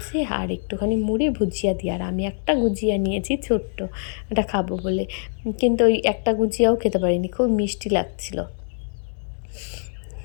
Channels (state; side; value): silent; right; digital silence